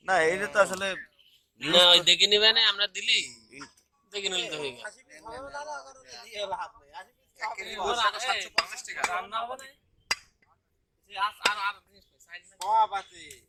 না এইটা তো আসলে না ওই দেখে নিবে না আমরা দিলি দেখে নিলে তো হয়ে গেল রান্না হবে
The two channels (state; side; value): identical; both; correlation 1.00